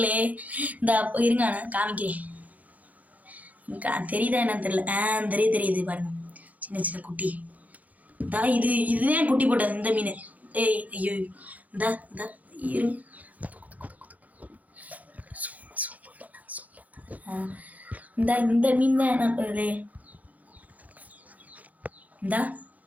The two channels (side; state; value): left; late; 0.076 ms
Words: இந்த இருங்க காமிக்கிறேன், தெரியுதா என்னன்னு தெரியல. தெரியுது பாருங்க, சின்ன சின்ன குட்டி. இதுதான் குட்டி போட்டது இந்த மீன். ஐயோ இந்த இரு இந்த மீன் தான் நண்பர்களே. இந்த